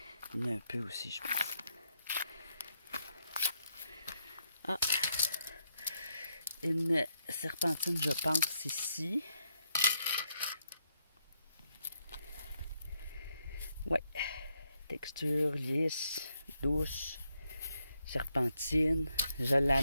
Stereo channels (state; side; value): inverted; both; correlation -0.79